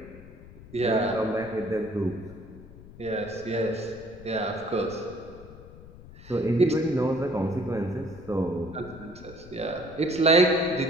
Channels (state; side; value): noise; left; rumble, 18 dB below the sound